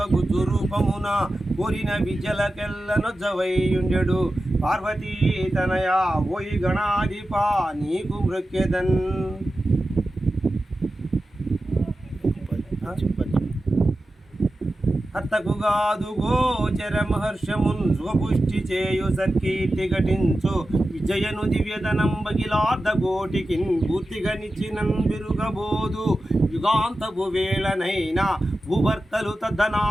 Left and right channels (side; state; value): both; normal; correlation 0.93